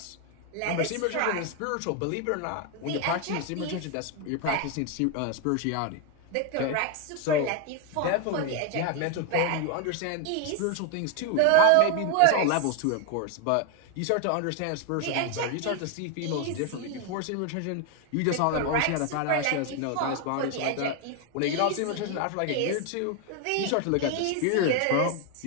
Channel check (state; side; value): different; both; correlation 0.01